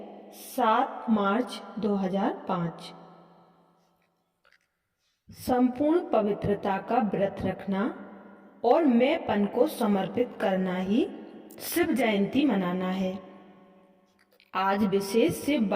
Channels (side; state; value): both; identical; correlation 1.00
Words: 7 मार्च 2005। संपूर्ण पवित्रता का व्रत रखना और मैंपन को समर्पित करना ही शिव जयंती मनाना है। आज विशेष शिव